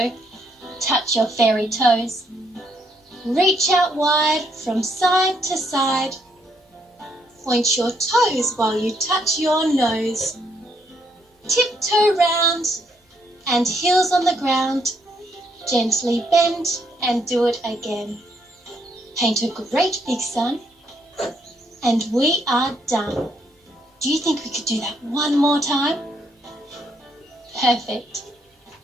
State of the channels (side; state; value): both; normal; correlation 0.73